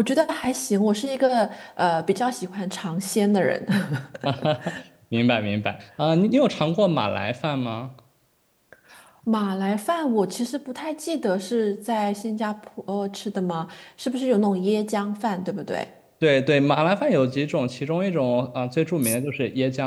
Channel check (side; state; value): both; identical; correlation 1.00